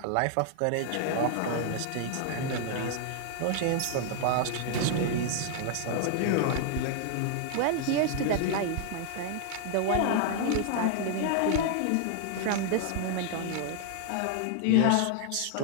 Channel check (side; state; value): both; different; correlation 0.00